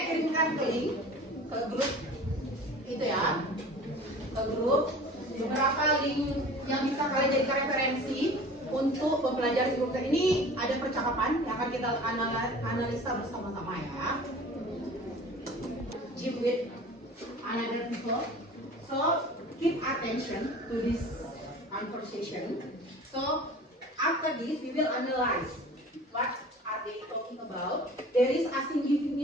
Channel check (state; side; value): normal; both; correlation 0.42